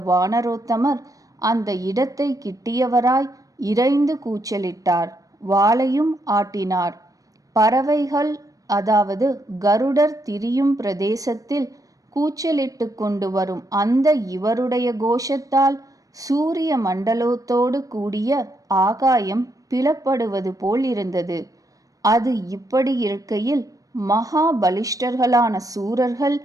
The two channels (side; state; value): left; late; 0.17 ms